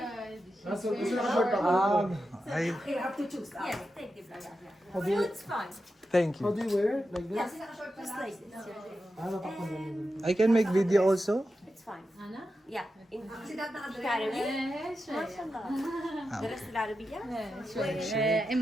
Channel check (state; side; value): normal; both; correlation 0.89